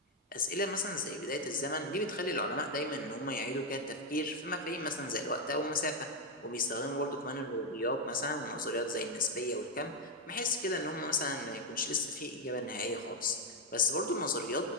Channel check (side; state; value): both; normal; correlation 0.03